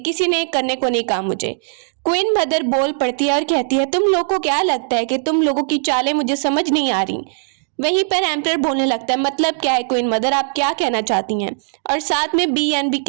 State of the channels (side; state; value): left; silent; digital silence